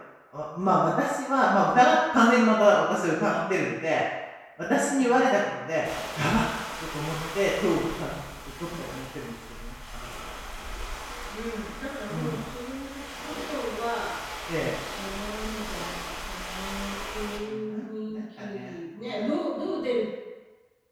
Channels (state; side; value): identical; both; correlation 1.00